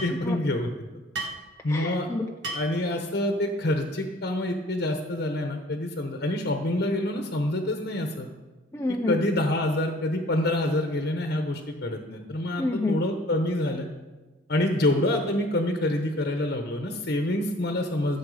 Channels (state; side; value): normal; both; correlation 0.53